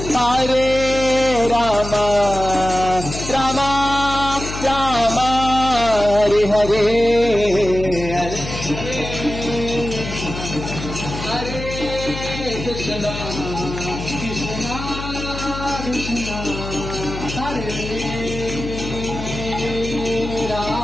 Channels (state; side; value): noise; left; hum, 8 dB below the sound